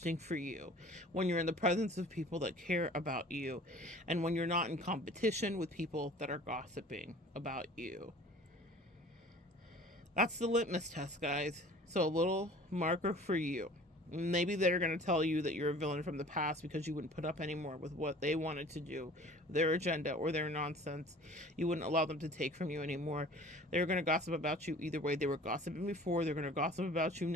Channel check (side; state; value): both; normal; correlation 0.47